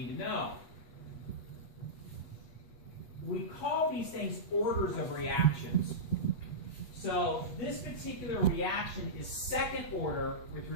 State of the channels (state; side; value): late; right; 8.2 ms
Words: to know. We call these things orders of reactions. So this particular reaction is second order with